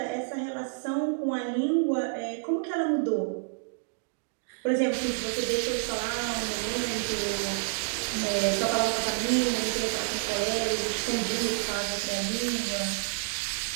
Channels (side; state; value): left; silent; digital silence